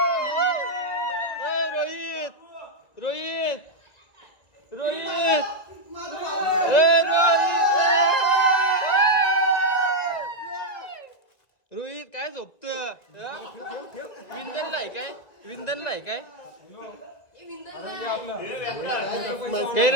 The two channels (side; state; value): right; late; 1.9 ms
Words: रोहित रोहित रोहित रोहित काय झोपत. विंधनला आहे काय. विंधनला आहे काय. काय